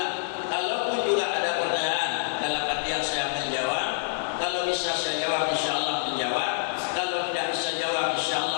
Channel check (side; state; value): right; silent; digital silence